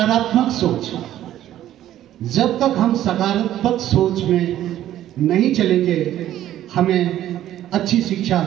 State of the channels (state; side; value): quieter; left; 12.6 dB